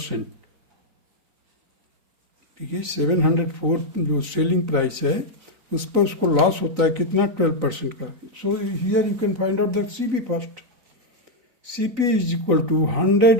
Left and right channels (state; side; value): late; left; 3.9 ms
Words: देखिए 704 जो selling price है उस पर उसको loss होता है कितना 12% का. So here you can find out the CP first. CP is equal to